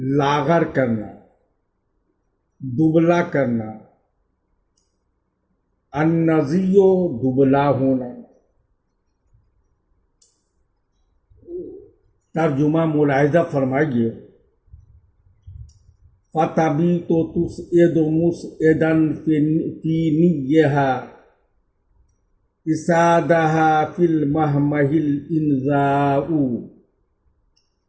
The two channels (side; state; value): both; identical; correlation 1.00